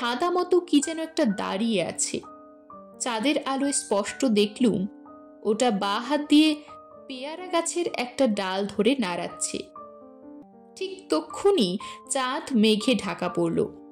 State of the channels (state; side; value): identical; both; correlation 1.00